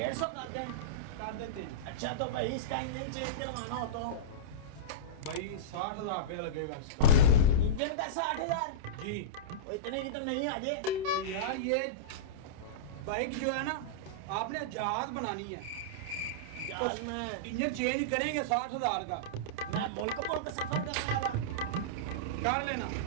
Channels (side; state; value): left; late; 29 ms